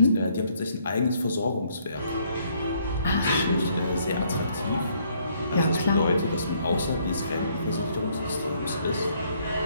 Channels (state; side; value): inverted; both; correlation -0.68